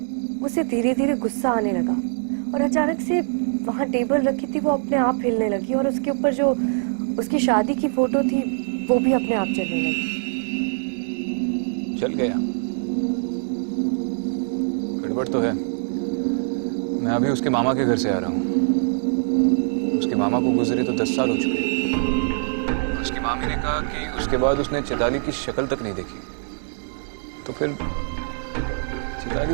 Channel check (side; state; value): left; silent; digital silence